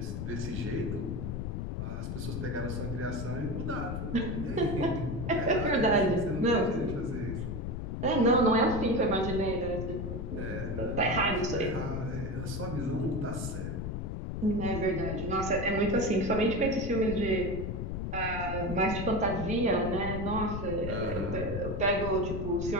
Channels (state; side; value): noise; left; rumble, 4 dB below the sound